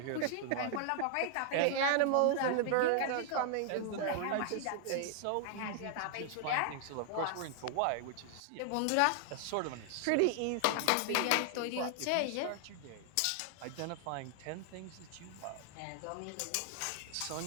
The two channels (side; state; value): both; different; correlation 0.00